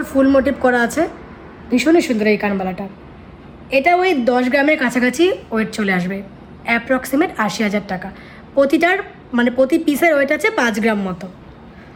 ফুল মোটিভ করা আছে, ভীষণই সুন্দর এই কানবালাটা। এটা ওই 10 গ্রামের কাছাকাছি ওয়েট চলে আসবে, অ্যাপ্রক্সিমেট 80,000 টাকা। প্রতিটার মানে প্রতি পিসের ওয়েট আছে 5 গ্রাম মতো।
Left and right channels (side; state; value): both; identical; correlation 1.00